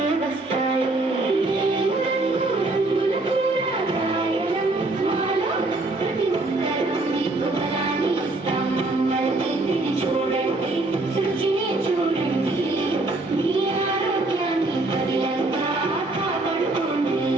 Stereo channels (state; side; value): quieter; left; 3.0 dB